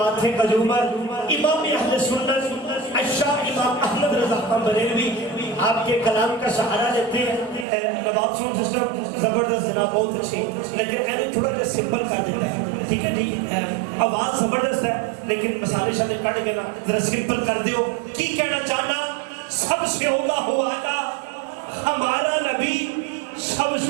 کا جومر امام اہل سنت الشاہ امام احمد رضا خان بریلوی آپ کے کلام کا سہارا لیتے ہیں. نواب ساؤنڈ سسٹم زبردست جناب بہت اچھی لیکن اینو تھوڑا جا سمپل کر دیتا ہے. ٹھیک ہے جی آواز زبردست ہے لیکن مسالے شامل کٹ کے نا ذرا سمپل کر دیو. کی کہنا چاہنا سب سے اولا ہو آنا ہمارا نبی سب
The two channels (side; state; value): left; drops out; at 7.7 s